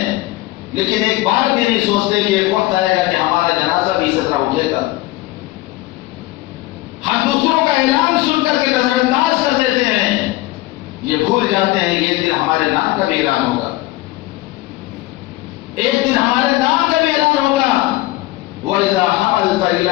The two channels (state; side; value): quieter; right; 18.3 dB